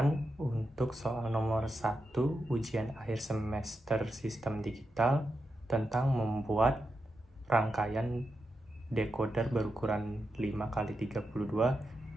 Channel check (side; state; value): both; normal; correlation 0.88